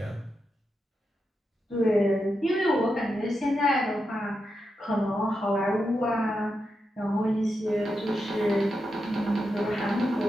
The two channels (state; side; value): normal; both; correlation 0.87